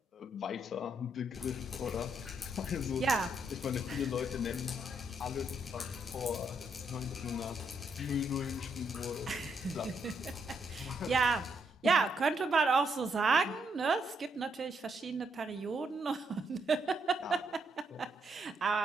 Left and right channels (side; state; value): both; normal; correlation 0.76